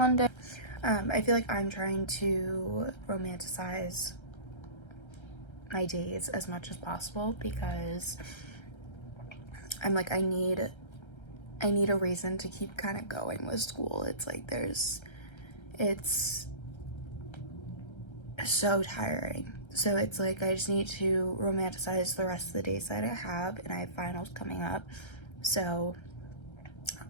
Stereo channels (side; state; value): right; late; 1.3 ms